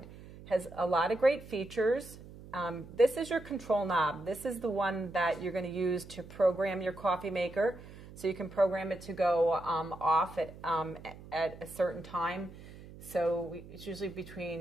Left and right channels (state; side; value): noise; right; hum, 17 dB below the sound